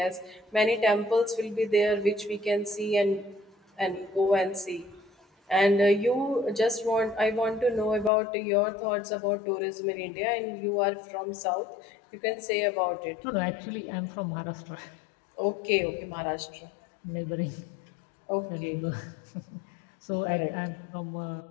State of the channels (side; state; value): right; drops out; at 8.1 s